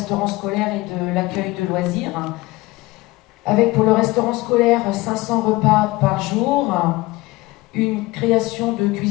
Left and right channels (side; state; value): right; quieter; 20.3 dB